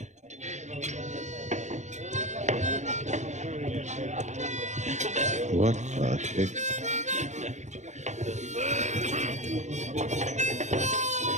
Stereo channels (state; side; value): late; left; 0.34 ms